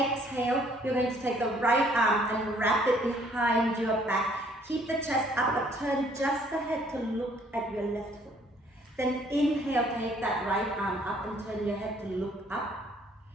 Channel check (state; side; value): normal; both; correlation 0.62